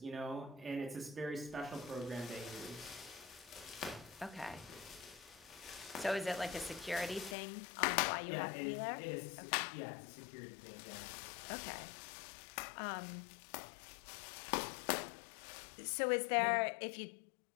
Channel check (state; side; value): drops out; right; at 7.4 s